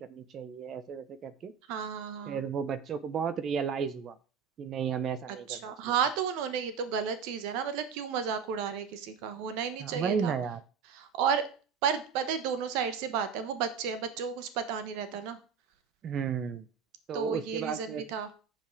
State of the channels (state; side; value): quieter; left; 6.7 dB